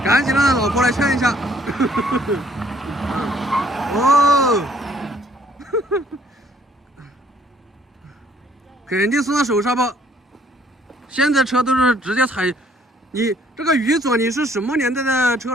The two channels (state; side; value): normal; both; correlation 0.63